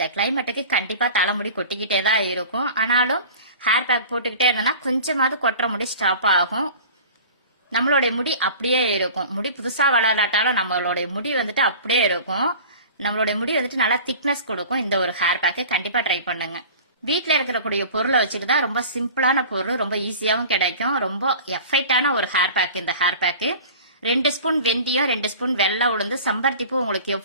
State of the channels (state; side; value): inverted; both; correlation -0.40